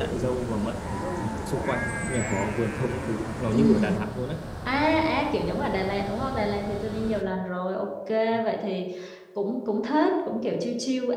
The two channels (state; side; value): identical; both; correlation 1.00